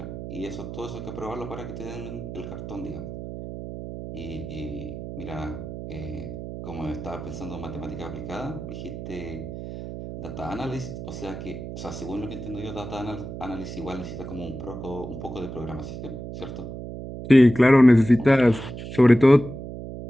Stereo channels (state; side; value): noise; right; hum, 9 dB below the sound